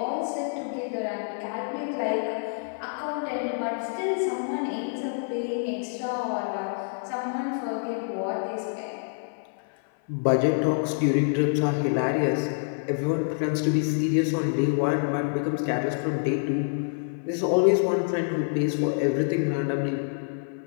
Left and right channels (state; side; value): silent; right; 55 dB below the other